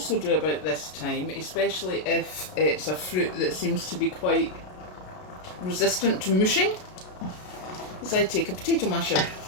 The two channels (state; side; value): late; right; 33 ms